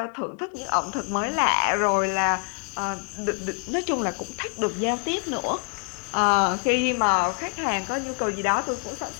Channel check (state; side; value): quieter; right; 39.3 dB